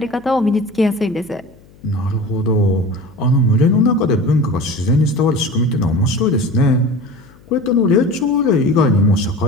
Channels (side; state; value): left; noise; hum, 26 dB below the sound